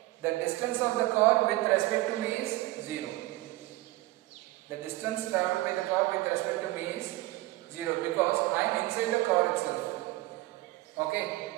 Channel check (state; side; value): quieter; left; 18.9 dB